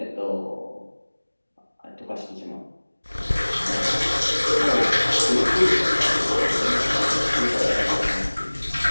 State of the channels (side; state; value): both; inverted; correlation -1.00